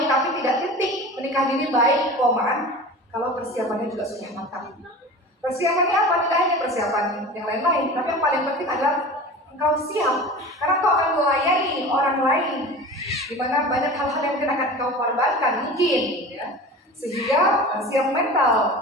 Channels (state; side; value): normal; both; correlation 0.35